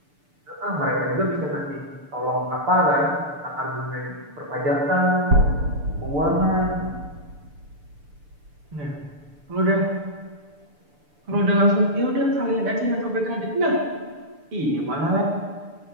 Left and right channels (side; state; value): left; late; 6.8 ms